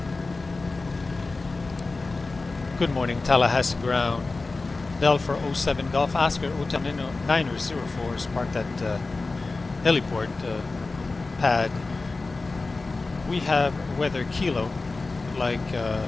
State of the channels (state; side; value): quieter; right; 3.6 dB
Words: Good morning, Tallahassee ground. Bell for 07 Golf, Oscar Hotel 904 is parked at heliport pad. We have weather Kilo, like the